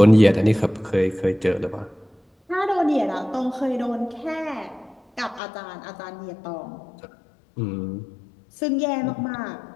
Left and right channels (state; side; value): drops out; right; at 5.4 s